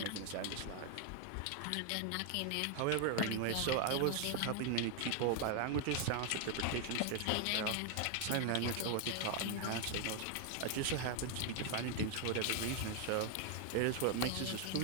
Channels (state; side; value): different; both; correlation 0.01